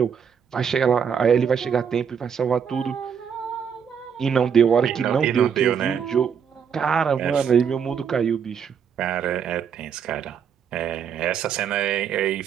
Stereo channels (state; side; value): quieter; left; 7.3 dB